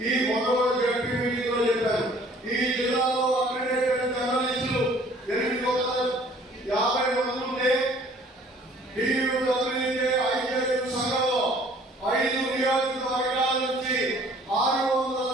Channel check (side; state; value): both; normal; correlation 0.55